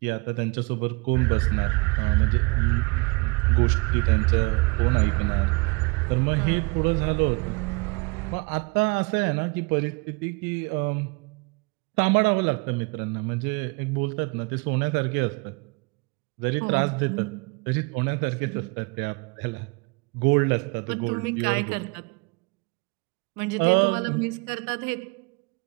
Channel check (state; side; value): quieter; left; 29.0 dB